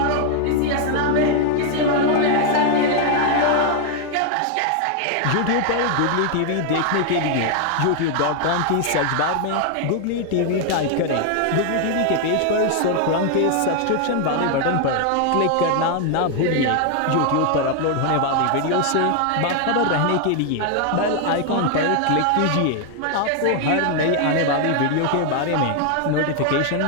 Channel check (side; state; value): both; different; correlation 0.00